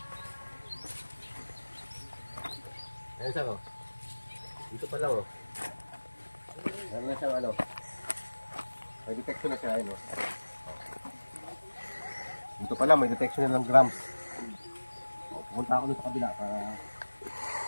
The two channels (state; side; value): inverted; both; correlation -1.00